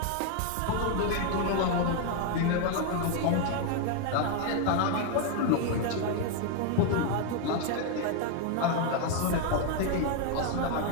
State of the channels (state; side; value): different; both; correlation 0.01